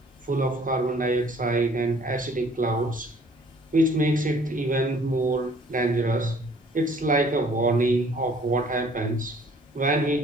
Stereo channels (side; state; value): both; normal; correlation 0.56